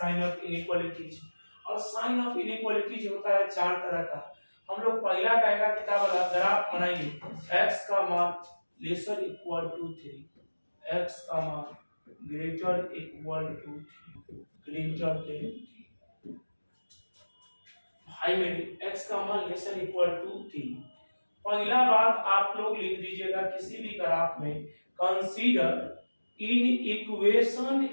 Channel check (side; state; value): both; inverted; correlation -1.00